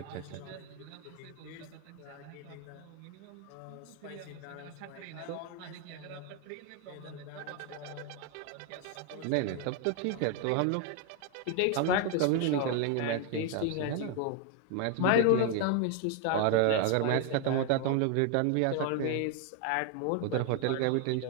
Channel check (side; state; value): both; different; correlation 0.01